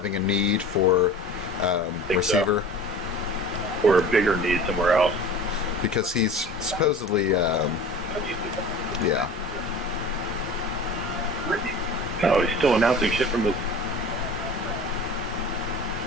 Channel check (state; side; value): normal; both; correlation 0.39